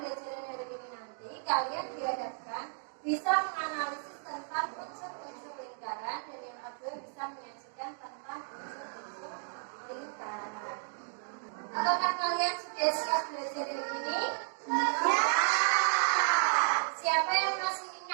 hari ini nanti kalian dihadapkan bisa menganalisis tentang unsur-unsur lingkaran dan yang kedua bisa menyajikan tentang unsur-unsur lingkaran. Apakah kalian sudah siap belajar hari ini? Ya. Siapa yang masih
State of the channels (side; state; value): left; silent; digital silence